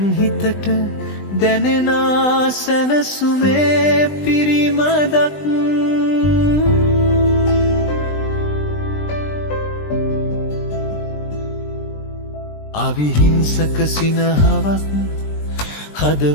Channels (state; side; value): late; right; 20 ms